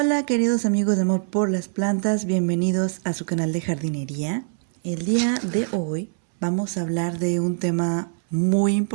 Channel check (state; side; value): silent; left; 63 dB below the other